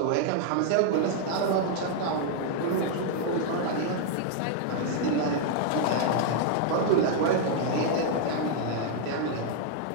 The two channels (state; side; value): different; both; correlation 0.00